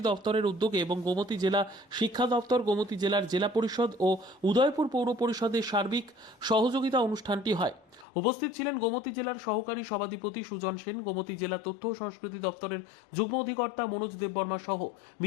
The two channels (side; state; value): right; drops out; at 8.1 s